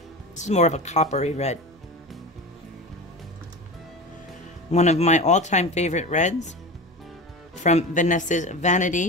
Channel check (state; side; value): normal; both; correlation 0.29